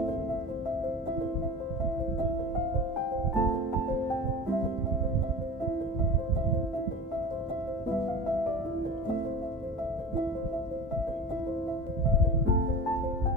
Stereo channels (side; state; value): both; normal; correlation 0.34